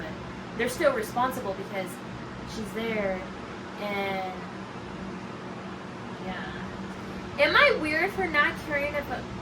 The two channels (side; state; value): both; identical; correlation 1.00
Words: they're still responsible because she's there, and yeah. Am I weird for not caring if a